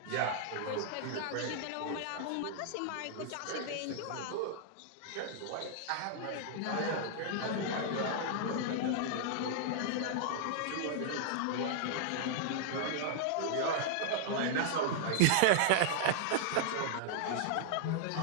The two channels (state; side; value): different; both; correlation -0.01